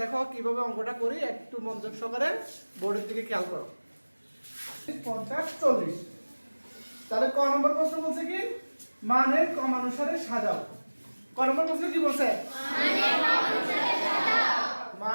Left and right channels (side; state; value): both; inverted; correlation -1.00